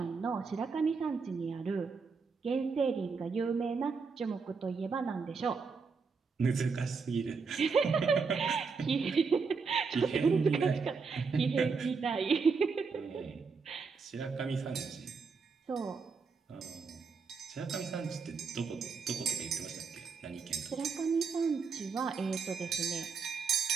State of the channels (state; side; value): quieter; left; 5.1 dB